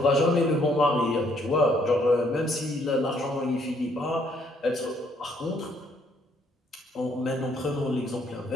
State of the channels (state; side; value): normal; both; correlation 0.68